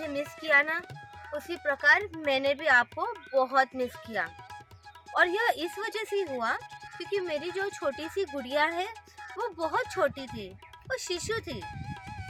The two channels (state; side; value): identical; both; correlation 1.00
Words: मिस किया ना, उसी प्रकार मैंने भी आपको बहुत मिस किया। और यह इस वजह से हुआ क्योंकि मेरी जो छोटी सी गुड़िया है वो बहुत छोटी थी, वो शिशु थी।